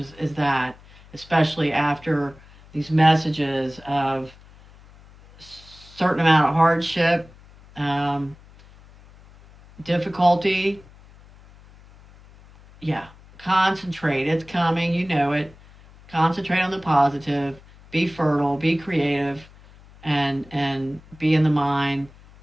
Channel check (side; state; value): left; noise; hum, 24 dB below the sound